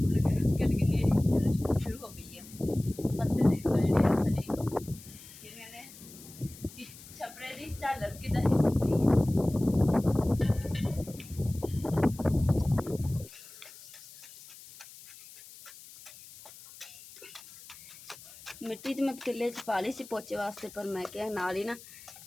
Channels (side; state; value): left; noise; hiss, 19 dB below the sound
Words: हुण हल्की हल्की शुरू हो गई है। पत्ते देखो जिहड़े थल्ले जिवें ने छपरे दी झालर किदां हिलदी पई है। मिट्टी तो मैं पतीले च पा ली सी पोचे वास्ते, पर मैं क्या नाल ही ना